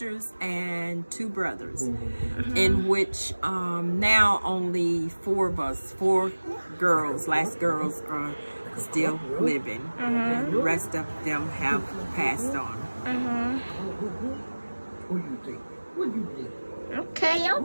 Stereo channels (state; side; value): inverted; both; correlation -1.00